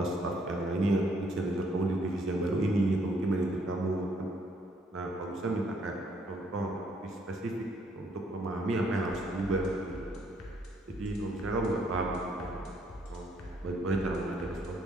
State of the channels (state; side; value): normal; both; correlation 0.68